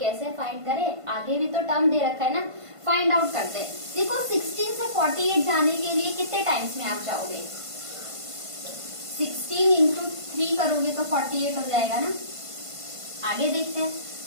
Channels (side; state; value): left; late; 1.5 ms